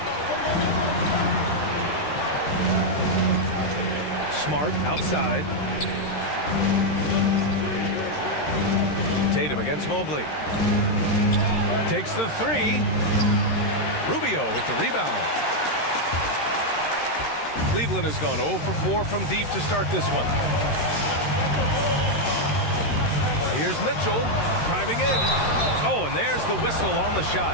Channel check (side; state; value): right; late; 13 ms